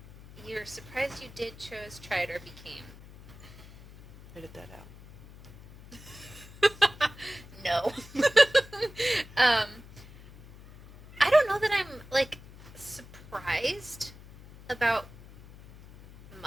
you're surprised you did, chose, tried, or became. Edit that out. No. I don't know that I'm, like, surprised about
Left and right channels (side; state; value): left; noise; hum, 19 dB below the sound